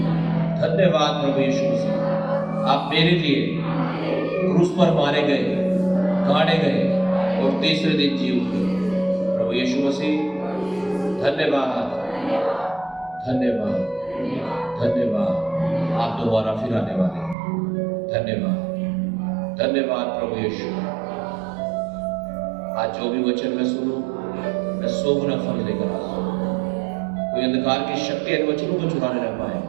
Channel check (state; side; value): drops out; left; at 17.4 s